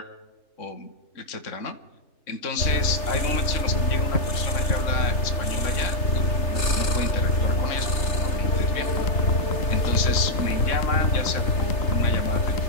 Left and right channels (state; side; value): late; right; 3.3 ms